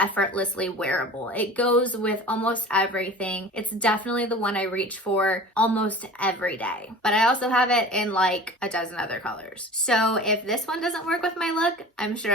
wearable. It goes with almost everything. It's definitely the one I reach for almost every day, but I also have it in like a dozen other colors. So if this one doesn't work with my look, I'm sure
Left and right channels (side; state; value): both; normal; correlation 0.39